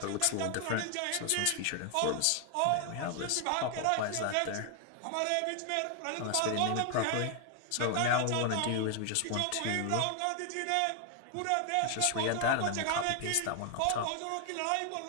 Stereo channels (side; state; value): both; different; correlation 0.00